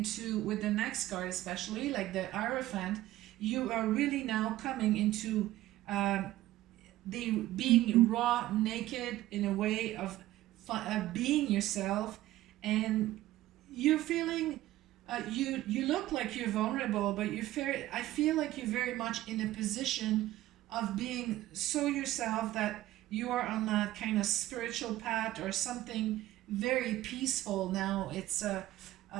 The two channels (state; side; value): quieter; left; 15.5 dB